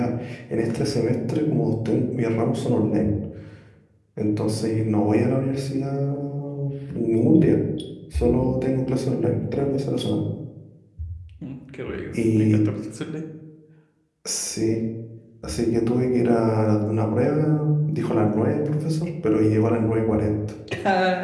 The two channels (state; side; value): identical; both; correlation 1.00